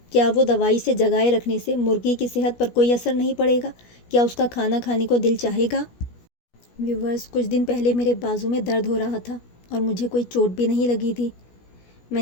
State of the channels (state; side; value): late; right; 17 ms